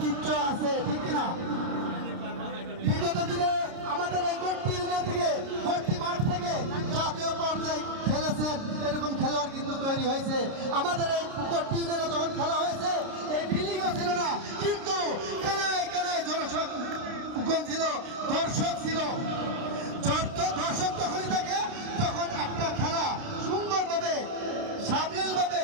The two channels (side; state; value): left; late; 29 ms